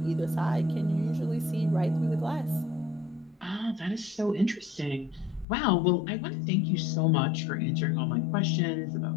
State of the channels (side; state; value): right; drops out; at 5.5 s